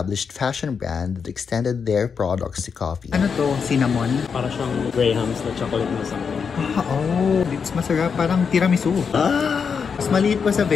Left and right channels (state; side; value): quieter; right; 6.1 dB